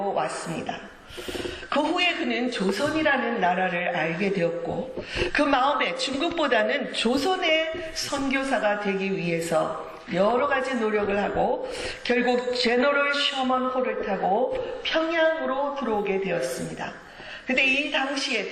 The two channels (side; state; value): both; identical; correlation 1.00